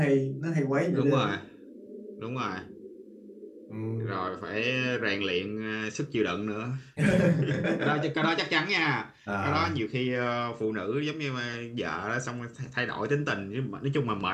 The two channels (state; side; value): identical; both; correlation 1.00